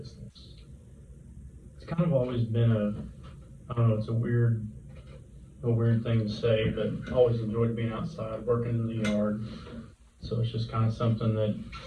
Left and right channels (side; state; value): both; identical; correlation 1.00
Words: It's kind of always been I don't know, it's a weird thing to say, but I always enjoyed being outside, working in the yard. So it's just kind of something that